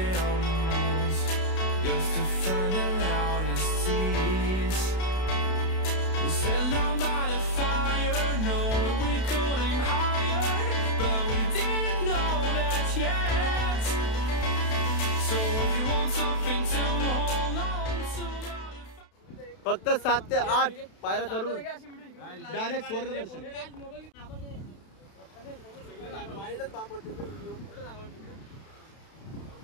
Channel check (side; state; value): right; late; 32 ms